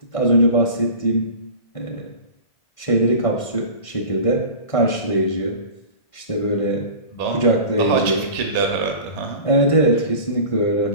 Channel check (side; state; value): right; late; 1.5 ms